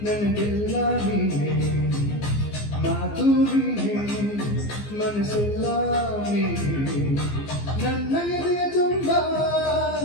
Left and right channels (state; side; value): late; right; 15 ms